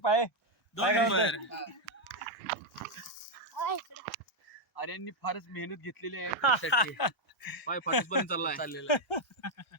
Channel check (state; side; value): normal; both; correlation 0.01